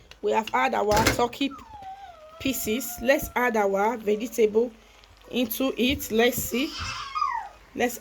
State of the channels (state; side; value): identical; both; correlation 1.00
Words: We have added our turkey pieces. Let's add our vegetable into it. Let's see. Let's